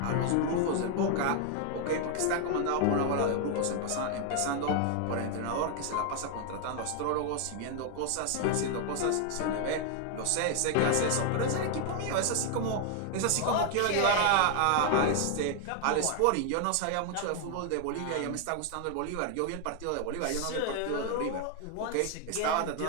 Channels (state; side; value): different; both; correlation 0.00